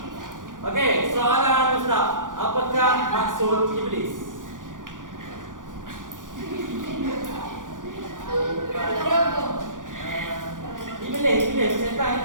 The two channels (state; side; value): late; left; 0.88 ms